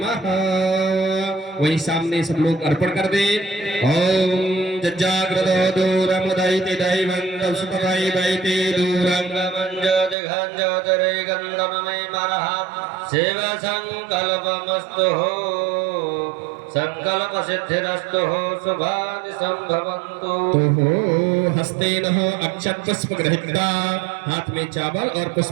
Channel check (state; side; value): drops out; left; at 10.2 s